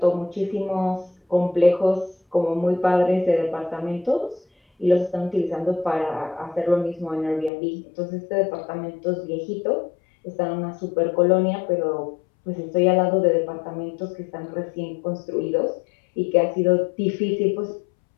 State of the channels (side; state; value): right; drops out; at 7.5 s